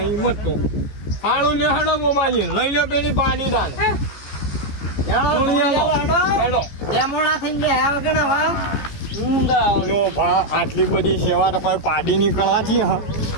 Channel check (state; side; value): late; right; 14 ms